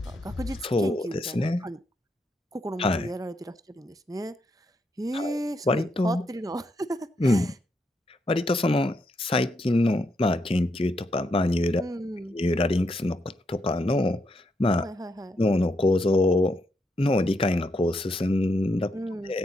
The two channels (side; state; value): both; normal; correlation 0.79